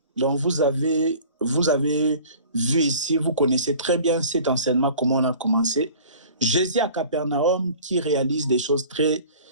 Donc vous avez vu ici, vous connaissez très bien cet enseignement, comment on a commencé. Jésus à Capernaum qui réalise des choses très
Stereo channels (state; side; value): inverted; both; correlation -0.45